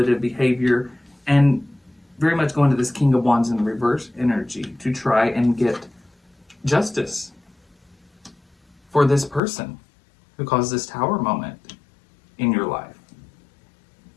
behavior and very much go into this King of Wands in reverse energy to try and get justice for this person who caused this Tower moment in your life.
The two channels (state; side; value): drops out; right; at 9.4 s